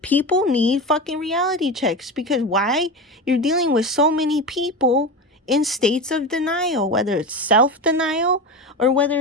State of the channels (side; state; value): both; normal; correlation 0.23